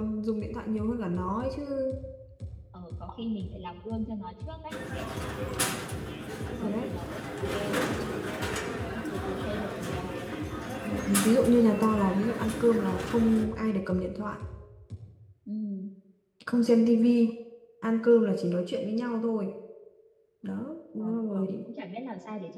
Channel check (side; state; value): both; identical; correlation 1.00